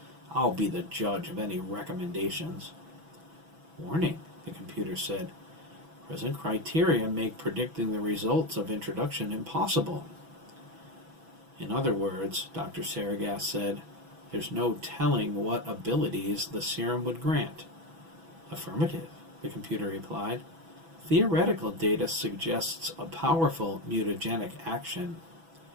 I'll be the judge of any recommendations. Warning, the computer said. Present criteria make predicting the results of introduction impossible. In other words, Dr. Saragas said, there's no telling what abilities the serum would grant. Affirmative, the computer replied. Theoretical data suggests a powerful mutagenic action.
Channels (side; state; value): left; late; 6.1 ms